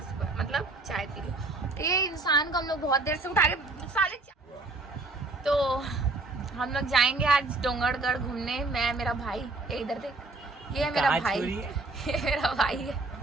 सुबह मतलब चाय पी रही हूँ। ये इंसान को हम लोग बहुत देर से उठा रहे साले। तो हम लोग जाएंगे आज डोंगरगढ़ घूमने। मैं, मेरा भाई, ये इधर देख, ये है मेरा भाई, ये मेरा भाई है।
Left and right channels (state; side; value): quieter; left; 3.3 dB